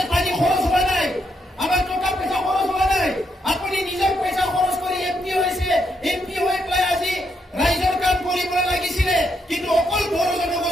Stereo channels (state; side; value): normal; both; correlation 0.78